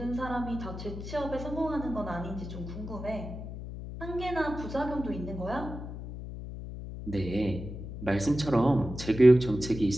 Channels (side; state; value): left; noise; hum, 9 dB below the sound